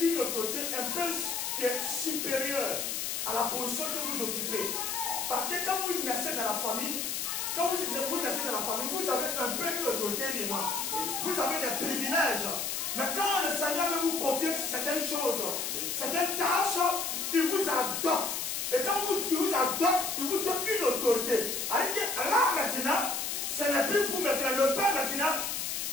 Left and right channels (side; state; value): left; noise; hiss, 2 dB below the sound